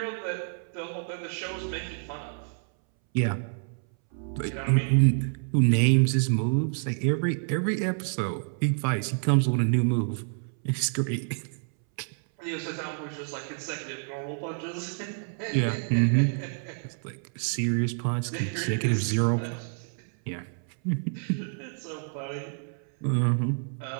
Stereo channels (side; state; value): left; silent; 59 dB below the other